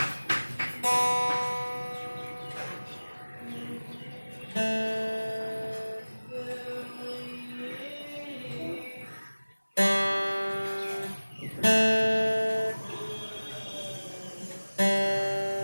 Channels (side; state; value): both; inverted; correlation -1.00